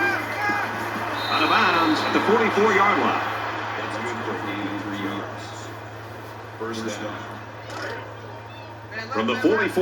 Out of bounds at the 44-yard line. That's good for 83 yards. First down. From the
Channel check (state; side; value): identical; both; correlation 1.00